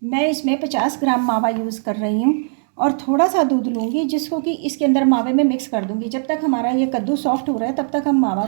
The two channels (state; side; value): silent; left; digital silence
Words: मैं इसमें 50 ग्राम मावा यूज़ कर रही हूँ और थोड़ा सा दूध लूँगी जिसको कि इसके अंदर मावे में मिक्स कर दूँगी। जब तक हमारा ये कद्दू सॉफ्ट हो रहा है तब तक हम मावा